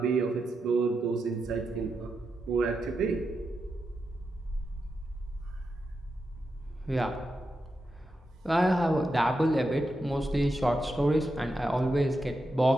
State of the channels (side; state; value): both; normal; correlation 0.87